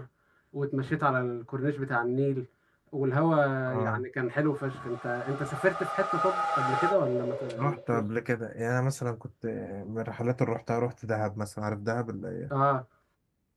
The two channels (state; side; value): identical; both; correlation 1.00